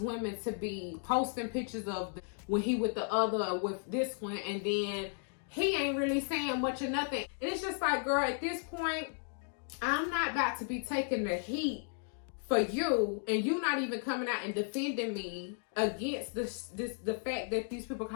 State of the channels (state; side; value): silent; right; 55 dB below the other